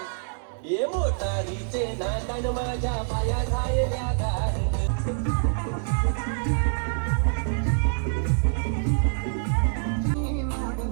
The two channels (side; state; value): left; silent; 61 dB below the other